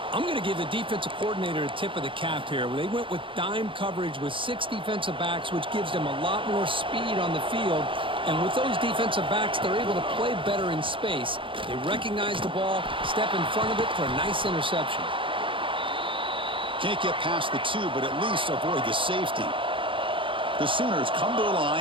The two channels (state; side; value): late; left; 0.25 ms